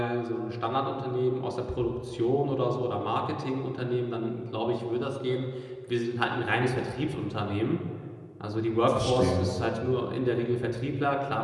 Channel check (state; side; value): identical; both; correlation 1.00